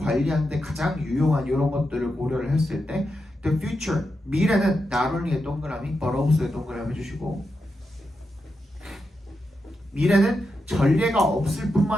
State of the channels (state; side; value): normal; both; correlation 0.87